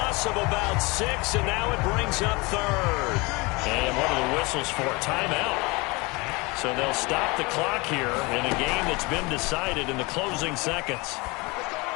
of about 6, and now it brings up third. And what are the whistles for? Timeout. So they'll stop the clock here in a game that's been decided in the closing seconds.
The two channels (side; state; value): right; quieter; 25.8 dB